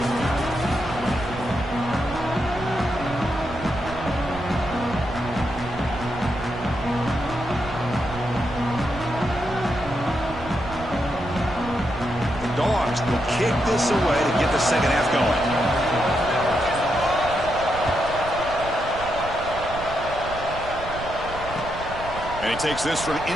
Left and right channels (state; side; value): noise; right; rumble, 11 dB below the sound